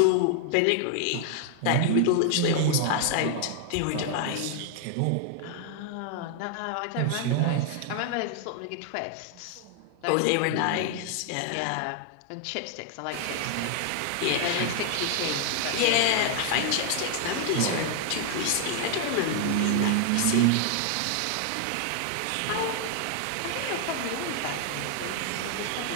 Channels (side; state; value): both; different; correlation 0.00